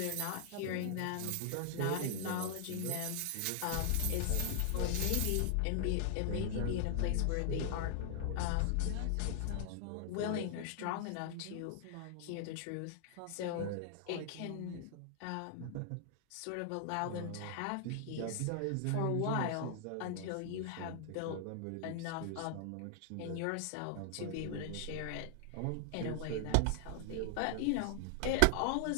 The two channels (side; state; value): both; different; correlation 0.00